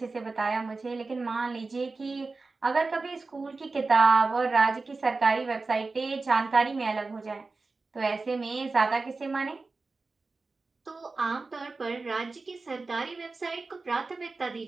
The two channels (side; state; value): left; quieter; 3.8 dB